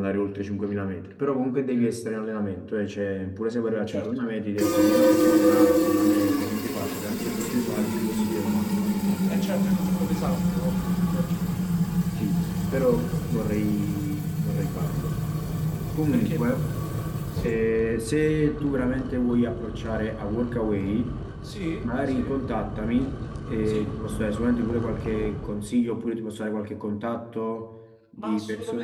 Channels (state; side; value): identical; both; correlation 1.00